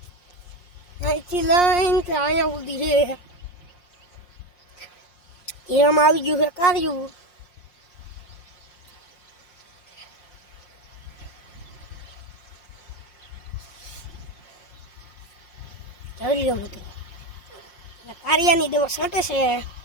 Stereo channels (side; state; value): right; late; 5.6 ms